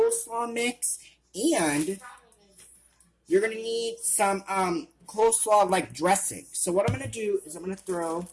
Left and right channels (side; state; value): both; identical; correlation 1.00